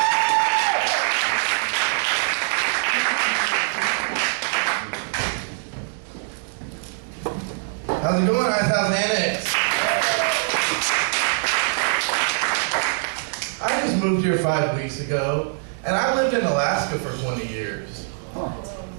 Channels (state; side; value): silent; left; 63 dB below the other